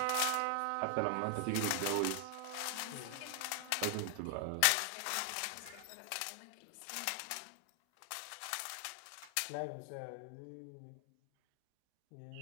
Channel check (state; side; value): different; both; correlation 0.00